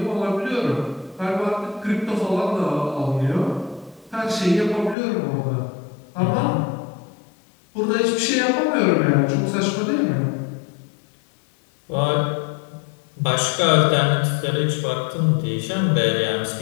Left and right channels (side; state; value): right; drops out; at 5.0 s